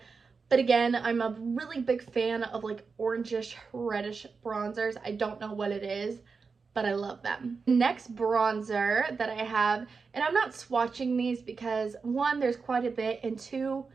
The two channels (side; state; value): left; quieter; 4.9 dB